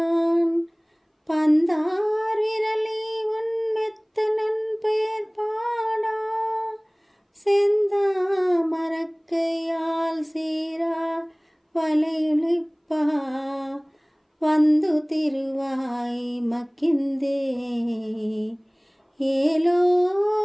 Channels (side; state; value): both; identical; correlation 1.00